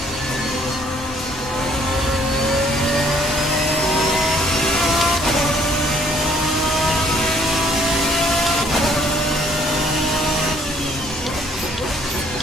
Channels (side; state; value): both; normal; correlation 0.63